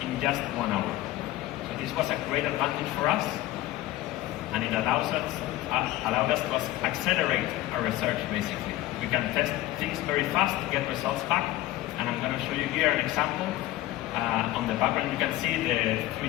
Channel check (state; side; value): quieter; right; 15.9 dB